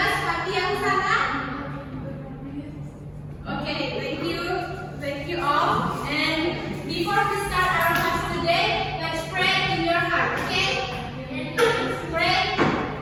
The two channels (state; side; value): identical; both; correlation 1.00